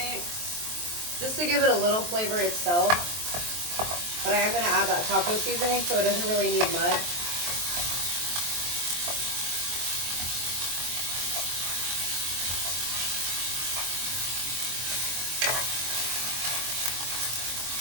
just to give it a little flavor itself. But I am gonna add that taco seasoning, so it doesn't really need much.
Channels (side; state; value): left; late; 23 ms